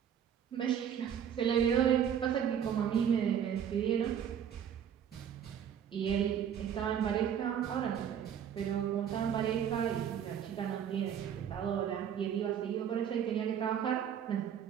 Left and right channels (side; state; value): left; quieter; 8.8 dB